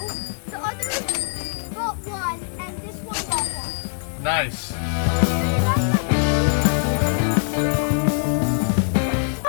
the other bought 1, and this one bought 1. Nice.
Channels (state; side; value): silent; right; 64 dB below the other